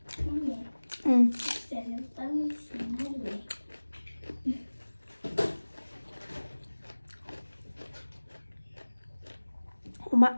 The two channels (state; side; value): inverted; both; correlation -1.00